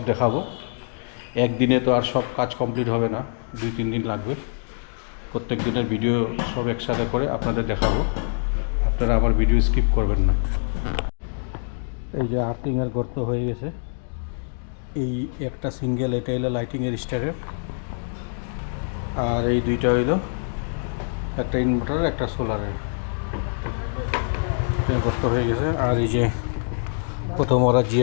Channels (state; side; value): silent; right; digital silence